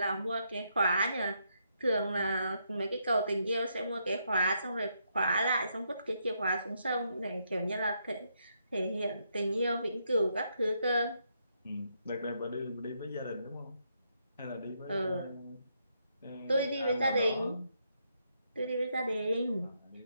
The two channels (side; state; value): both; inverted; correlation -0.78